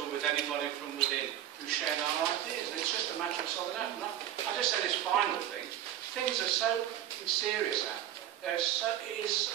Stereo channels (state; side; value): quieter; left; 11.8 dB